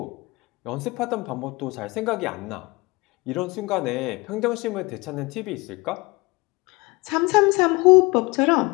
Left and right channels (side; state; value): right; quieter; 24.3 dB